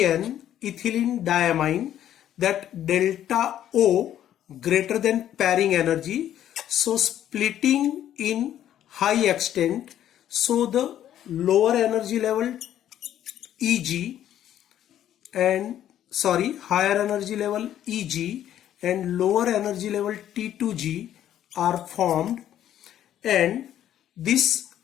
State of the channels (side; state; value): right; quieter; 11.3 dB